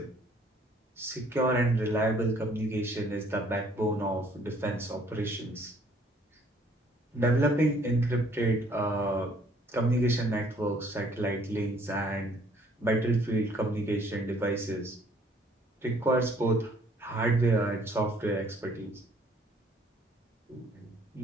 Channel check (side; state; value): both; normal; correlation 0.60